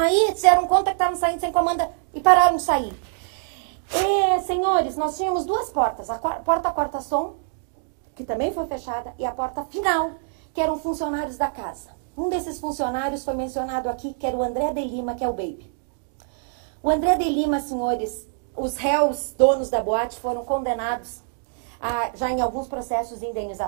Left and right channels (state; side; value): silent; left; digital silence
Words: se deram conta que estavam saindo sem comanda e pararam de sair. E, senhores, nós tínhamos 2 portas. A porta quarta-som, que também foi fechada, e a porta final, que eram funcionários da casa. Um desses funcionários foi mencionado aqui, que era o André de Lima, que é o Baby. O André de Lima, senhores, os réus, donos da boate, foram condenados já em alguns processos